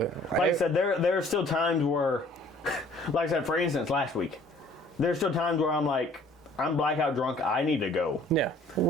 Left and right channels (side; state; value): both; normal; correlation 0.55